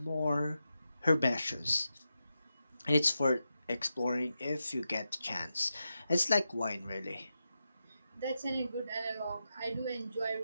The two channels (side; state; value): both; inverted; correlation -0.89